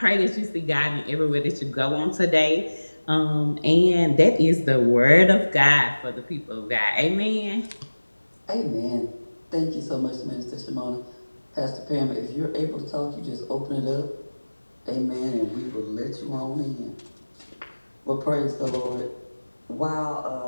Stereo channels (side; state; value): both; inverted; correlation -1.00